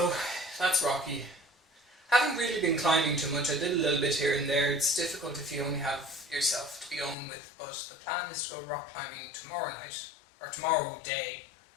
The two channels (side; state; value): right; drops out; at 7.2 s